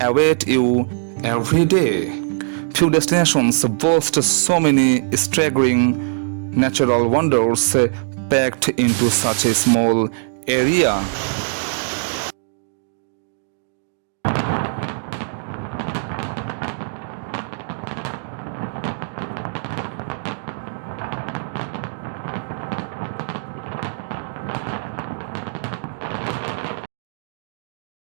you every day. Few destinations boast so many staggering natural wonders packed into such a small area.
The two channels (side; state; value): left; silent; digital silence